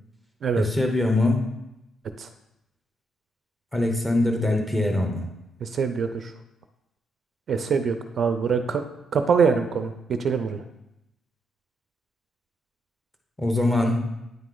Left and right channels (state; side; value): normal; both; correlation 0.79